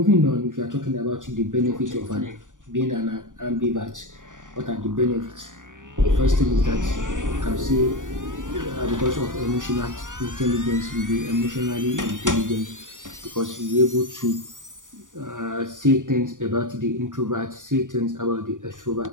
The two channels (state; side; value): late; left; 0.87 ms